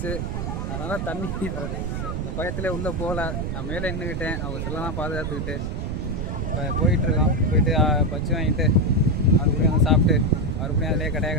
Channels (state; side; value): noise; right; rumble, 3 dB below the sound